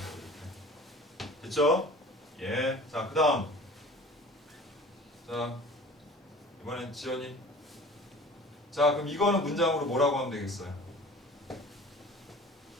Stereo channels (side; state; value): both; normal; correlation 0.43